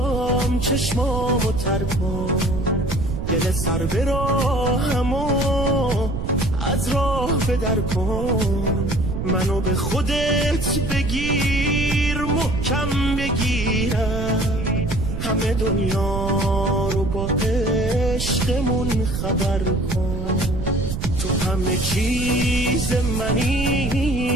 چشمامو تر کن، دل سر به راهمو از راه بدر کن. منو به خودت بگیر، محکم بگیرم، همه دنیا رو با عشقمون خبر کن. تو همه چیز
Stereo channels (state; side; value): noise; right; rumble, 3 dB below the sound